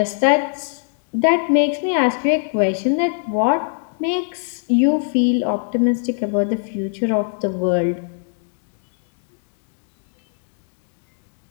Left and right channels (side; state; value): right; silent; digital silence